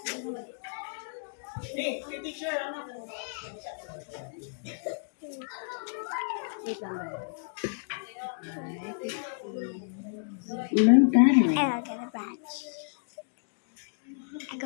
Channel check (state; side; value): silent; right; digital silence